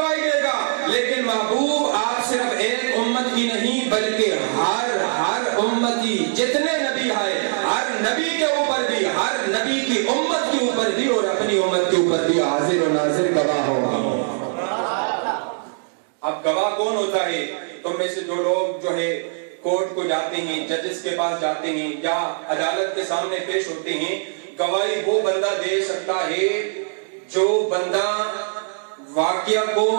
دے گا، لیکن محبوب آپ صرف ایک امت کی نہیں بلکہ ہر امتی، جتنے نبی آئے ہر نبی کے اوپر بھی، ہر نبی کی امت کے اوپر بھی اور اپنی امت کے اوپر بھی حاضر و ناظر گواہ ہوگا۔ اب گواہ کون ہوتا ہے؟ تم میں سے جو لوگ جو ہے کورٹ کو جاتے ہیں، ججز کے پاس جاتے ہیں یا عدالت کے سامنے پیش ہوتے ہیں، گواہی وہ بندہ دے سکتا ہے جو بندہ واقعہ کو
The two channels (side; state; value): left; silent; digital silence